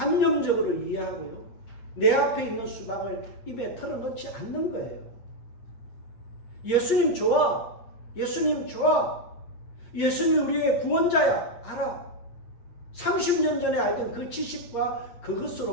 이해하고요, 내 앞에 있는 수박을 입에 털어넣지 않는 거예요. 예수님 좋아, 예수님 좋아, 예수님이 우리의 구원자야 알아. 30년 전에 알던 그 지식과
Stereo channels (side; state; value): right; late; 8.6 ms